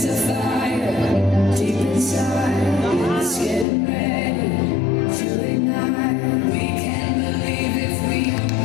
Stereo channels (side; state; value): right; drops out; at 3.7 s